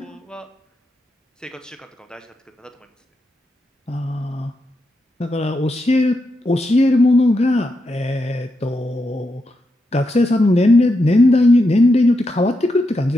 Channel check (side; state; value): both; normal; correlation 0.85